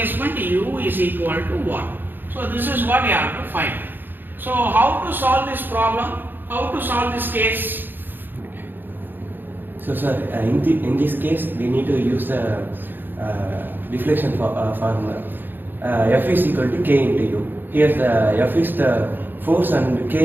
U is equal to 1. So this is what you have to find. So how to solve this problem? How to solve this case? So sir, in this case we need to use the deflection formula. F is equal to K into U. Here the F is the force and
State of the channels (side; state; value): left; late; 0.094 ms